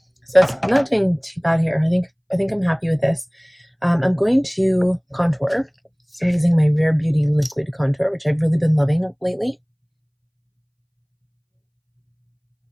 so it's not doing too bad here. I think I'm happy with this. I'm going to contour. So I'm using my Rare Beauty liquid contour, which I've really been loving lately.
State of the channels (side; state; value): both; identical; correlation 1.00